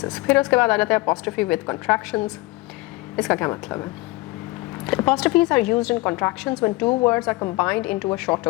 फिर उसके बाद आ जाता है अपॉस्ट्रोफी विद कॉन्ट्रैक्शंस. इसका क्या मतलब है? Apostrophes are used in contractions when 2 words are combined into a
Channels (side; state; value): right; quieter; 21.7 dB